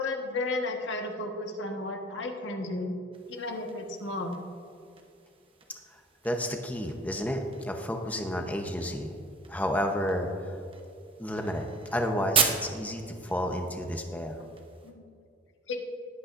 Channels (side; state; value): both; normal; correlation 0.43